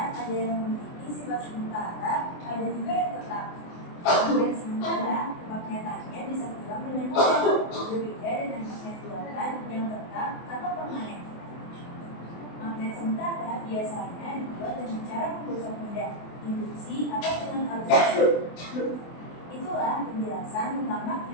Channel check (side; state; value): right; late; 24 ms